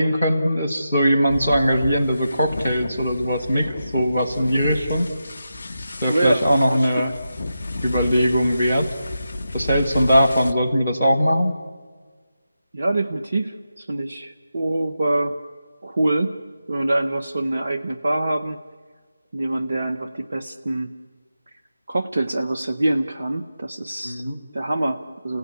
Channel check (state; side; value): inverted; both; correlation -0.89